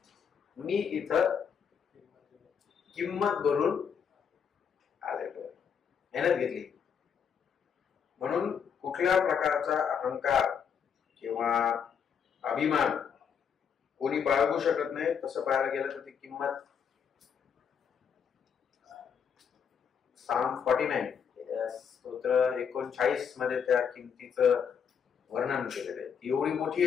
मी इथं किंमत भरून आलेलो, मेहनत घेतली. म्हणून कुठल्या प्रकारचा अहंकार किंवा अभिमान कोणी बाळगू शकत नाही. तसं पाहायला गेलं तर ती किंमत Psalm 49 स्तोत्र 39 मध्ये त्या किमतीचं वर्णन केलेलं आहे. ती एवढी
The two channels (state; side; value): quieter; right; 7.3 dB